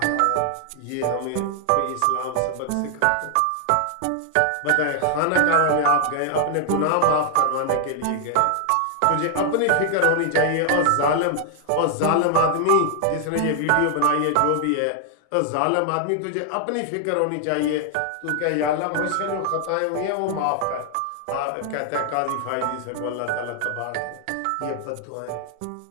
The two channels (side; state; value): both; different; correlation 0.00